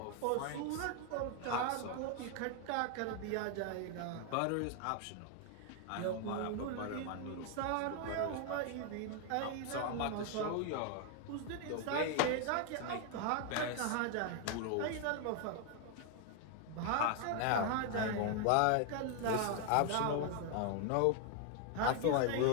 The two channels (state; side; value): different; both; correlation 0.00